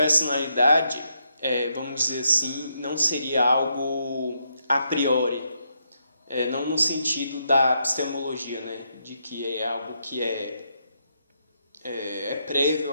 vamos dizer assim, não seria algo a priori, não no sentido da epistemologia, né, de que é algo que é prévio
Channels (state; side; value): inverted; both; correlation -0.79